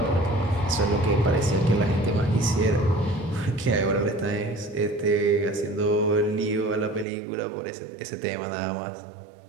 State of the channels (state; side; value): drops out; left; at 7.1 s